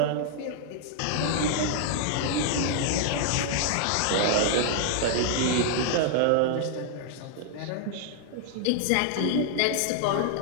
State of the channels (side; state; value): both; different; correlation -0.01